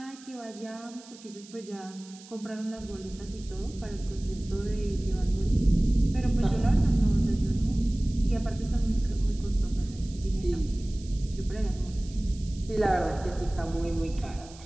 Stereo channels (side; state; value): right; noise; hiss, 20 dB below the sound